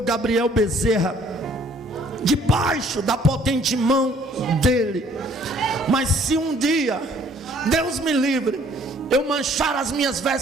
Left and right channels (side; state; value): both; normal; correlation 0.59